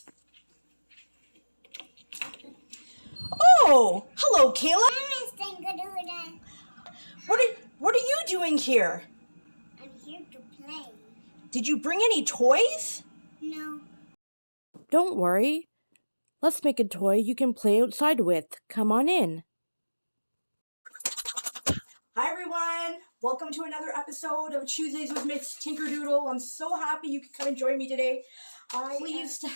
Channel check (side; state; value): both; inverted; correlation -1.00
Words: Oh, hello, Kayla. ms.tinkerdoodle. What are you doing here? I'm here to play. Did you bring any toys? No. Don't worry. Let's make a toy you can play outside with. Come on in. Hi everyone, welcome to another episode of Tuesdays with Ms. Tinkerdoodle. I'm so happy you could come and join me today. I'm pleased to